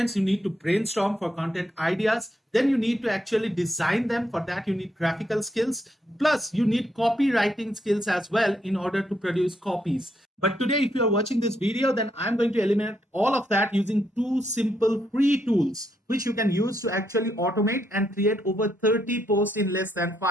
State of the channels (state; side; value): normal; both; correlation 0.77